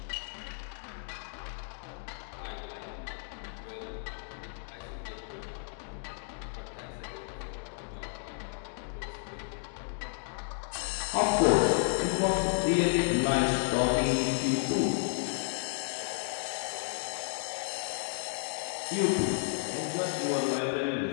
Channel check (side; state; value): right; silent; 56 dB below the other